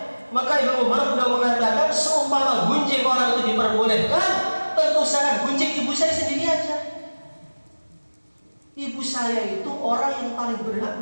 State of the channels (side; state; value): both; inverted; correlation -1.00